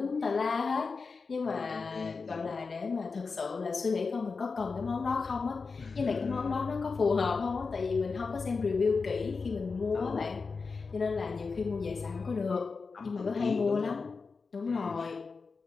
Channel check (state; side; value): quieter; right; 4.6 dB